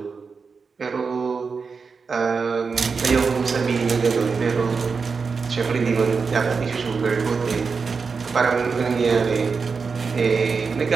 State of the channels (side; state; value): left; quieter; 5.1 dB